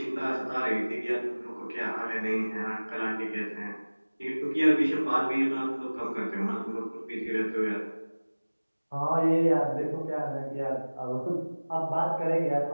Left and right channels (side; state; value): both; inverted; correlation -1.00